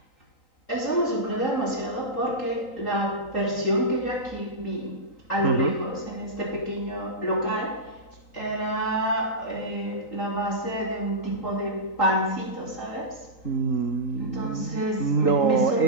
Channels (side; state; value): right; late; 3.8 ms